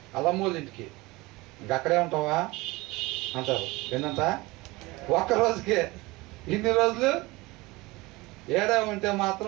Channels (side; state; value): left; quieter; 22.0 dB